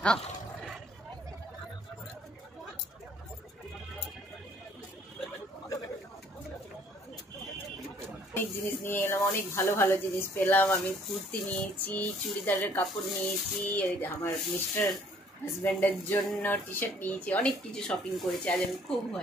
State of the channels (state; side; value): normal; both; correlation 0.60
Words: হ্যাঁ, অনেক জিনিস নিয়ে এলাম, অনেক ভালো ভালো জিনিস পেলাম। আমি কুর্তি নিয়েছি, চুড়িদারের কাপড় নিয়েছি, আমার মিস্টার হাজব্যান্ডের জন্য টি শার্ট নিয়েছি, অনেক কিছু শপিং করেছি। আজ আমি খুব